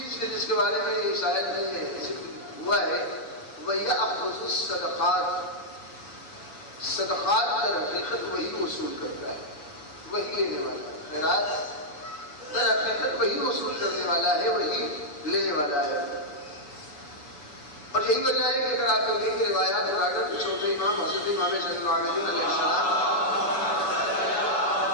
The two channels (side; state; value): right; late; 7.0 ms